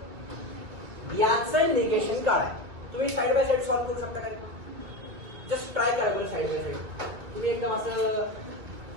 याचं निगेशन काढा. तुम्ही साइड बाय साइड सॉल्व्ह करू शकता का, जस्ट ट्राय करा बरं साइड बाय साइड. तुम्ही एकदम असं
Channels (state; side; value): late; left; 2.0 ms